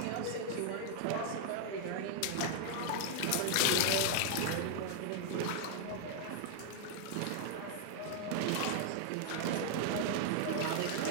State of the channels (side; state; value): both; different; correlation 0.00